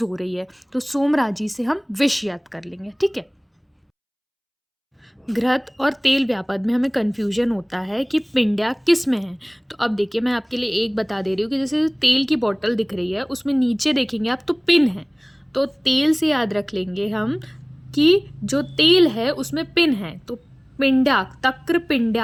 हो रही है, तो सोमराजी से हम विष याद कर लेंगे। ठीक है। घृत और तेल व्यापद में हमें कन्फ्यूजन होता है कि पिंड्या किस में है। तो अब देखिए मैं आपके लिए एक बता दे रही हूँ कि जैसे तेल की बोतल दिख रही है उसमें नीचे देखेंगे आप तो पिन है, तो तेल से याद रख लेंगे हम कि जो तेल है उसमें पिन है, तो पिंडाक, तक्र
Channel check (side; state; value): both; identical; correlation 1.00